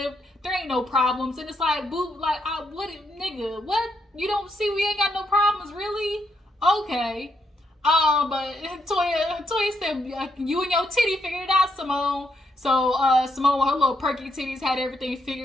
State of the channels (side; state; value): both; normal; correlation 0.77